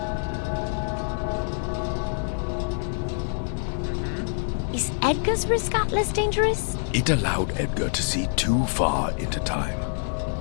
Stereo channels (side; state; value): right; silent; 61 dB below the other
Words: Is Edgar's Risk Atlas dangerous? It allowed Edgar to see too far into time,